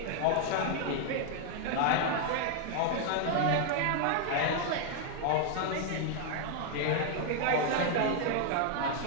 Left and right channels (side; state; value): both; different; correlation 0.00